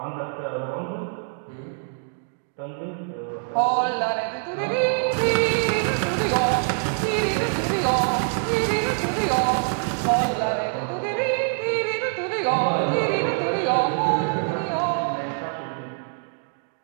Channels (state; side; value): silent; left; 60 dB below the other